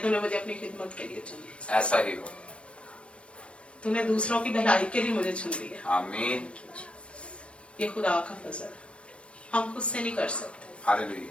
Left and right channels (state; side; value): late; right; 0.060 ms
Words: मुझे अपनी खिदमत के लिए चुना। ऐसा ही हो। तूने दूसरों की भलाई के लिए मुझे चुन लिया। आमीन। ये खुदा का फजल, हम खुद से नहीं कर सकते।